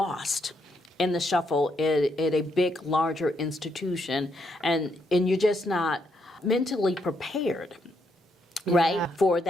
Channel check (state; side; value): normal; both; correlation 0.77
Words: in the shuffle at a big, larger institution, and you're just not mentally prepared, right, for